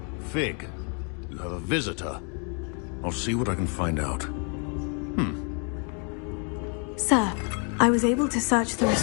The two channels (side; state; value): right; quieter; 39.6 dB